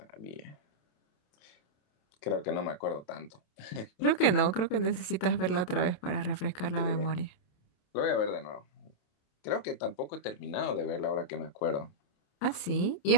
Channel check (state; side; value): late; right; 28 ms